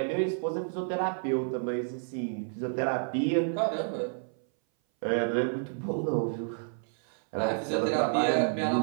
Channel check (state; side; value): silent; left; 57 dB below the other